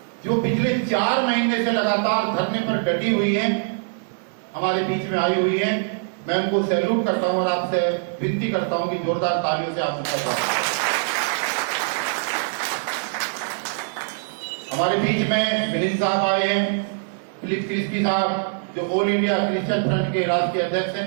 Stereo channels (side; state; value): left; silent; 63 dB below the other